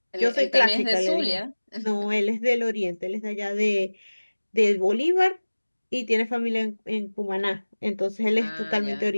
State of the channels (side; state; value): both; inverted; correlation -1.00